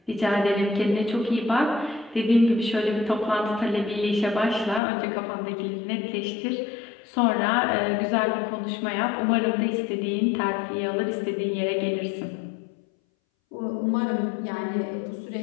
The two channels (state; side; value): drops out; right; at 4.8 s